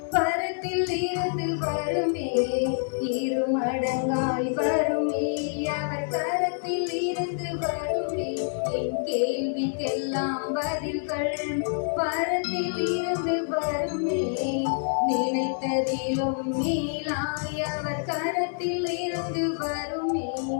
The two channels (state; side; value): silent; right; digital silence